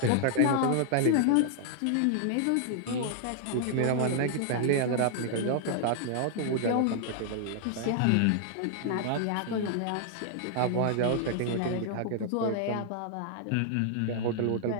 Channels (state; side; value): different; both; correlation -0.01